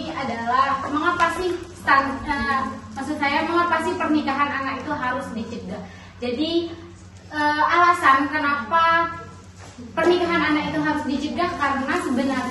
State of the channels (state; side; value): identical; both; correlation 1.00